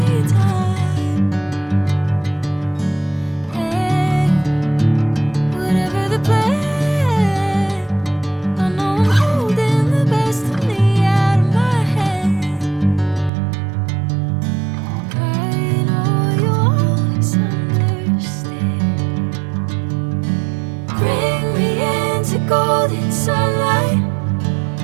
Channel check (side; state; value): left; drops out; at 13.3 s